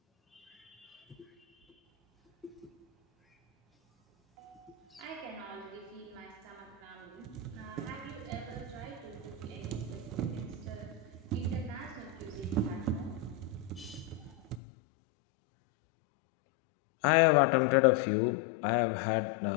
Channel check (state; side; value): drops out; right; at 14.6 s